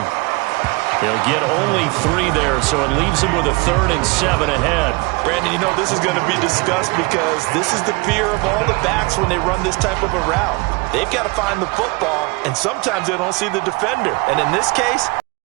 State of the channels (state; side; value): quieter; left; 26.4 dB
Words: He'll get only 3 there, so it leaves him with a 3rd and 7 ahead. Brandon, you know this is going to be discussed because this is the fear of all the backs when they run this type of a route. They've got to find the football, and sometimes they don't see the defender. And in this case,